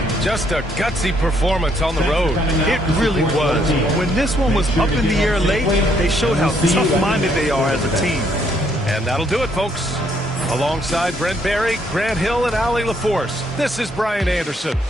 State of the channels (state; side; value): normal; both; correlation 0.70